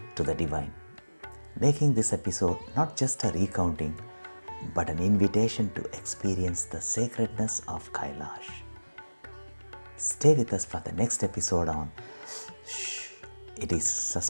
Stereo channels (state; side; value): inverted; both; correlation -1.00